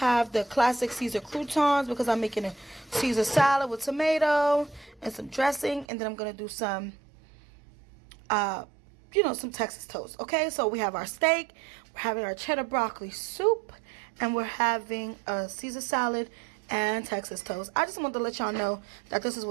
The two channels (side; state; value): left; drops out; at 5.9 s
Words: the classic Caesar croutons because I'm making a Caesar salad with tomato and some dressing. And then I'm going to do some, some Texas toast, okay? So we have our steak, we're having our cheddar broccoli soup, and we're having a Caesar salad and Texas toast. I just wanted to let y'all know that this is